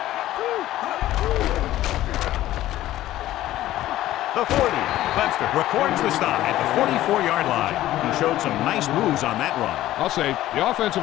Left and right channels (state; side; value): quieter; right; 14.5 dB